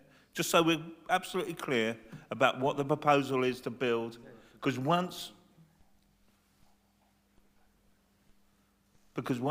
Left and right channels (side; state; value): both; identical; correlation 1.00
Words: Just so we're absolutely clear about what the proposal is to build, because once